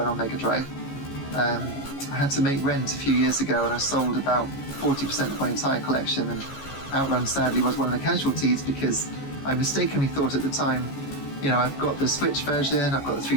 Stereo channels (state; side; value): late; right; 14 ms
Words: on Mega Drive. I had to make rent a few years ago and I sold about 40% of my entire collection, and Outrun sadly was one of the casualties because I mistakenly thought at the time, you know, I've got the Switch version, I've got the